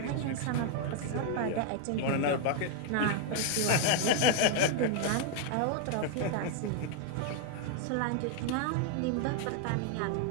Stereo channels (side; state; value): both; different; correlation 0.00